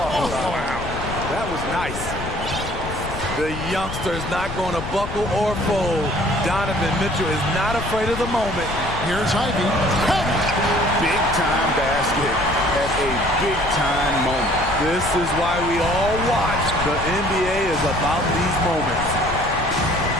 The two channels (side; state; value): left; noise; rumble, 8 dB below the sound